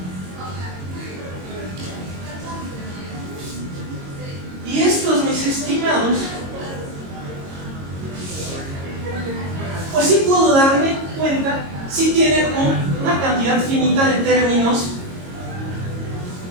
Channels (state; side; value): late; left; 22 ms